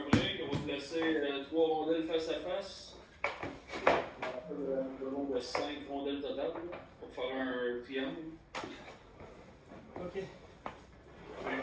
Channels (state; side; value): identical; both; correlation 1.00